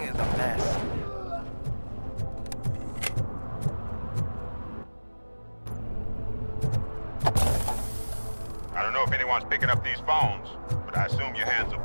is a mess. I don't know if anyone's picking up these phones, but I assume your hands are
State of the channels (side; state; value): both; inverted; correlation -1.00